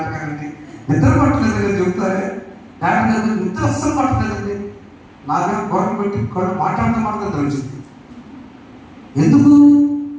నిద్ర పట్టలేదు అని చెబుతారే. నాటకాలు నిద్ర అస్సలు పట్టలేదండి. నాకేమో గొడవ పెట్టి మాట్లాడటం వచ్చింది. ఎందుకు?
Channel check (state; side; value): identical; both; correlation 1.00